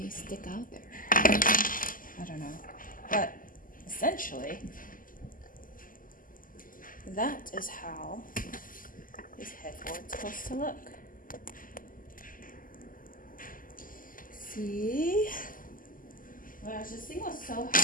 stick out there. I don't know. But essentially, that is how this headboard's supposed to look. See? Gosh, this thing was so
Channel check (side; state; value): right; late; 0.40 ms